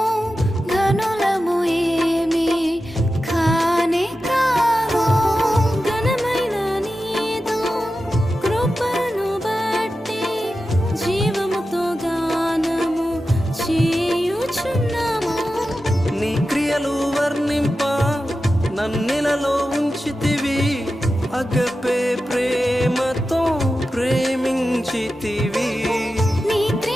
ఘనులము ఏమి కానే కాదు. ఘనమైన నీదు కృపను బట్టి జీవముతో గానము చేయుచున్నాము. నీ క్రియలు వర్ణింప నన్నిలలో ఉంచితివి, అగపే ప్రేమతో ప్రేమించితివి. నీ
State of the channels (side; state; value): both; normal; correlation 0.92